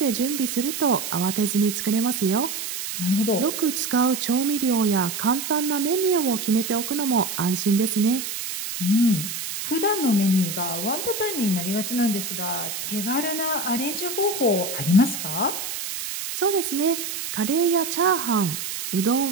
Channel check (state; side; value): noise; right; hiss, 5 dB below the sound